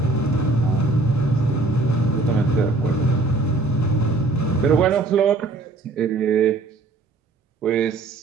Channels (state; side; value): quieter; left; 3.2 dB